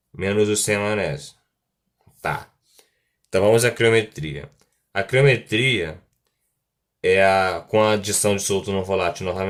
menos o sem a maionese. Tá. Então vamos à criometria. A criometria é com a adição de soluto não volátil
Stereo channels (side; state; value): both; identical; correlation 1.00